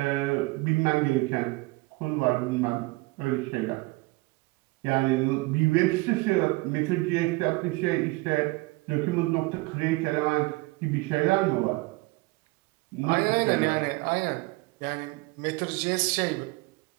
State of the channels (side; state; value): left; quieter; 23.1 dB